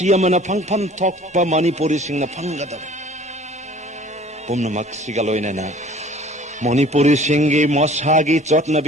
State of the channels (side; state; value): both; normal; correlation 0.49